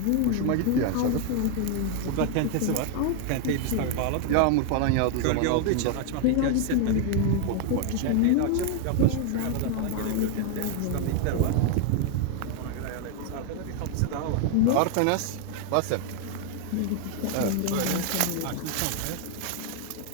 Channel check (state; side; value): different; both; correlation 0.00